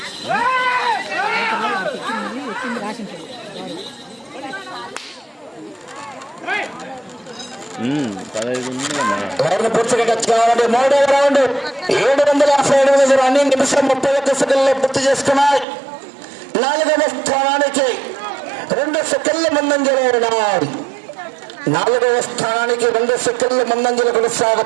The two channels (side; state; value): left; drops out; at 15.7 s